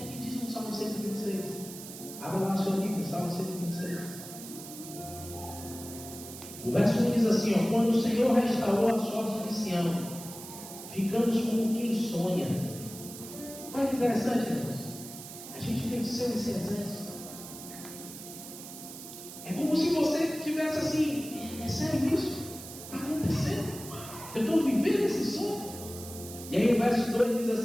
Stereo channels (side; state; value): right; noise; hiss, 13 dB below the sound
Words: é que diz no Salmo 126? Abra lá a sua Bíblia, Salmo 126. O verso 1 diz assim, ó: quando o Senhor restaurou a sorte de Sião, ficamos como quem sonha. Olha que interessante, irmãos. A gente venceu esse exército. É como se você tivesse assim, é sério isso? Está acontecendo? Eu estou vivendo esse sonho? E aí o verso 2 diz